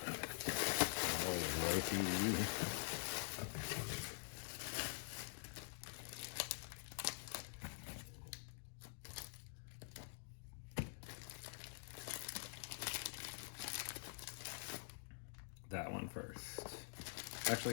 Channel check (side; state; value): right; silent; digital silence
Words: That one first.